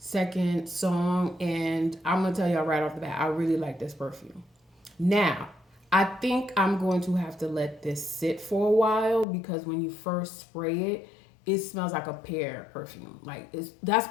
song, and I'm gonna tell y'all right off the bat, I really like this perfume. Now, I think I'm going to have to let this sit for a while because when you first spray it, it smells like a pear perfume. Like that's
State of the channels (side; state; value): right; drops out; at 9.2 s